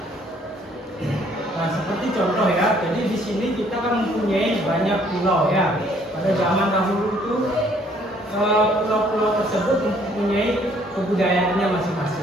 Nah, seperti contoh ya, jadi di sini kita kan mempunyai banyak pulau ya. Pada zaman dahulu itu pulau-pulau tersebut mempunyai kebudayaannya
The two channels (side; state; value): both; normal; correlation 0.62